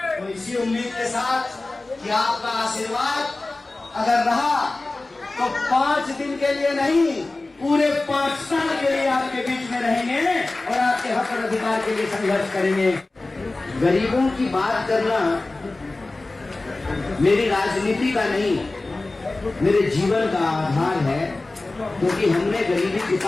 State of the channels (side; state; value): right; quieter; 3.1 dB